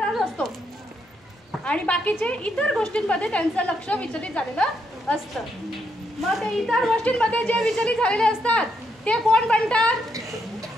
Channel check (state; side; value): normal; both; correlation 0.78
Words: असतो आणि बाकीचे इतर गोष्टींमध्ये त्यांचं लक्ष विचलित झालेलं असतं. मग ते इतर गोष्टींमध्ये जे विचलित झालेले असतात ते कोण बनतात?